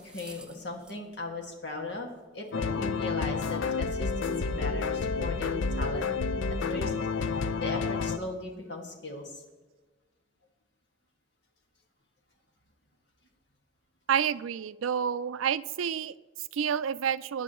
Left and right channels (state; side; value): normal; both; correlation 0.06